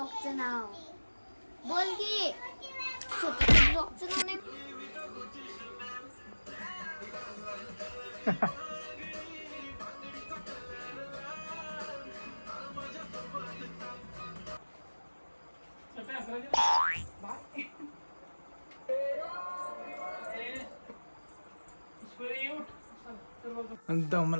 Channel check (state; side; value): inverted; both; correlation -1.00